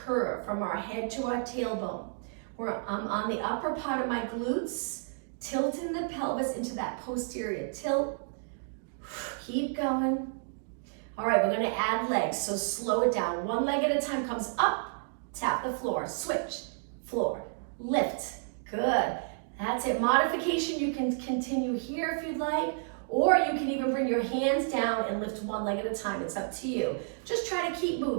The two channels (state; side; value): silent; left; digital silence